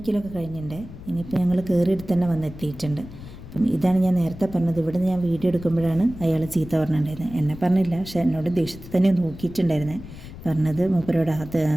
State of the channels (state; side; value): noise; left; rumble, 15 dB below the sound